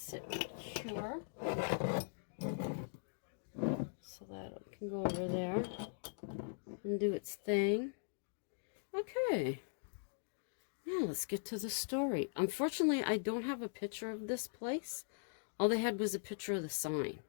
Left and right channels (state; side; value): silent; right; digital silence